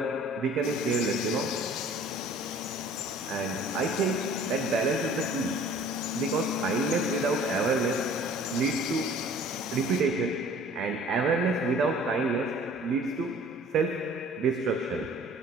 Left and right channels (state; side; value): normal; both; correlation 0.50